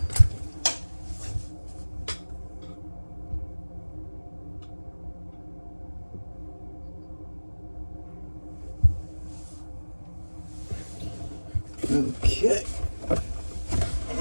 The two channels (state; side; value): inverted; both; correlation -1.00